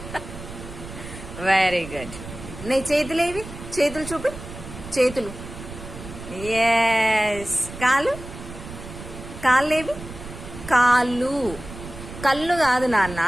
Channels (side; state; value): right; noise; rumble, 13 dB below the sound